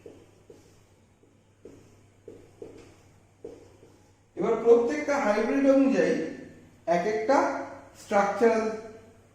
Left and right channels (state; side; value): identical; both; correlation 1.00